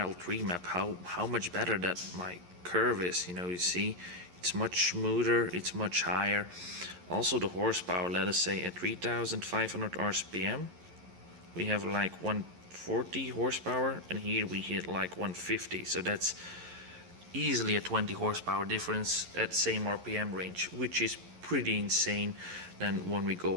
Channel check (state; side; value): late; left; 11 ms